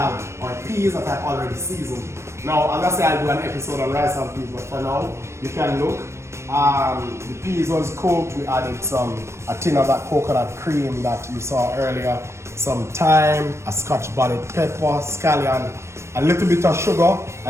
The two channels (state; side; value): late; left; 0.13 ms